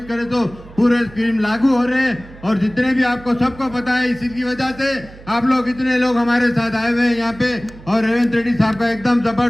करे तो पूरे स्कीम लागू हो रहे हैं। और जितने भी आपको सबको पता है, इसी की वजह से आप लोग इतने लोग हमारे साथ आए हुए हैं यहाँ पे और रेवंत रेड्डी साहब का एकदम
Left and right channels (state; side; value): noise; right; hum, 19 dB below the sound